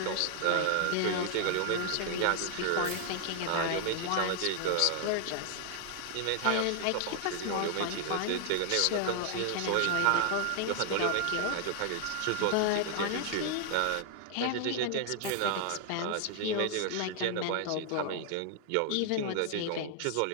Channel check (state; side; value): different; both; correlation 0.00